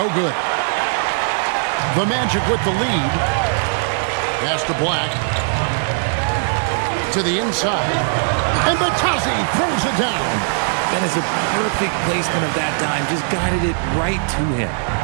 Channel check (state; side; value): silent; left; 66 dB below the other